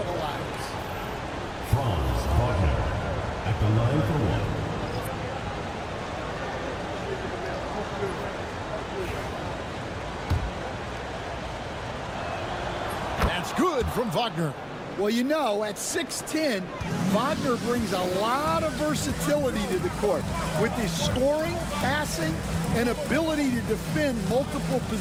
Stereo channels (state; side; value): identical; both; correlation 1.00